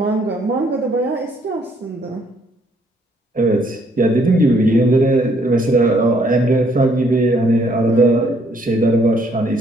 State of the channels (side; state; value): both; normal; correlation 0.67